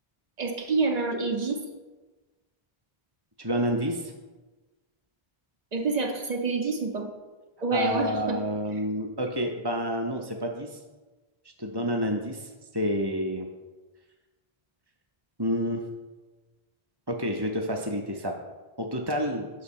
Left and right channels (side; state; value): left; late; 1.9 ms